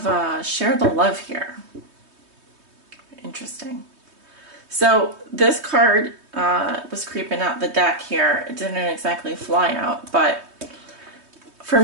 share the love here. Interesting. So this card was creeping out the deck here. It didn't exactly fly out, but for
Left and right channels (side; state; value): left; late; 3.2 ms